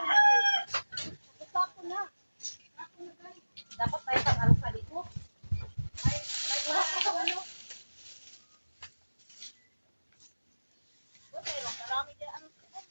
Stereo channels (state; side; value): inverted; both; correlation -1.00